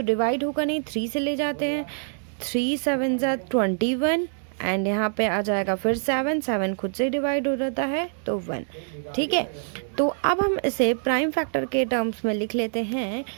डिवाइड होगा नहीं, 3 से ले जाते हैं, 3 7 21 एंड यहाँ पे आ जाएगा फिर 7, 7 खुद से डिवाइड हो जाता है तो 1, ठीक है। तो अब हम इसे प्राइम फैक्टर के टर्म्स में लिख लेते हैं।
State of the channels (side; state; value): left; silent; digital silence